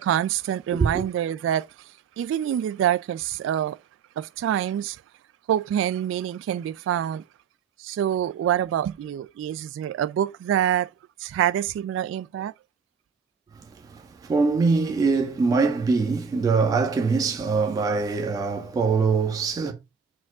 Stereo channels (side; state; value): left; quieter; 6.4 dB